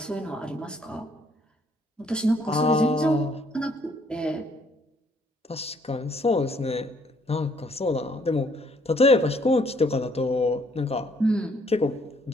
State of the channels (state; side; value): normal; both; correlation 0.65